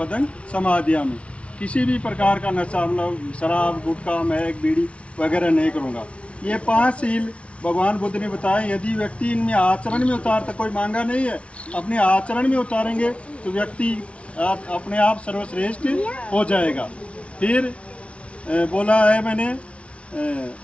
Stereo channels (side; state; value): right; late; 0.061 ms